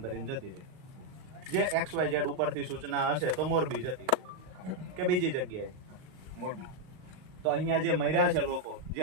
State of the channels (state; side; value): late; left; 38 ms